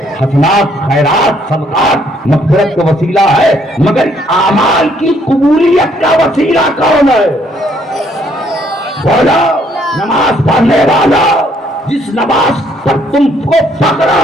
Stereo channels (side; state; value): both; normal; correlation 0.67